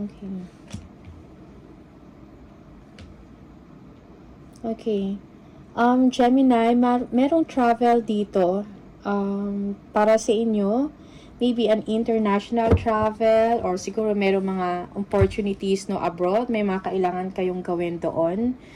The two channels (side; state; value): both; identical; correlation 1.00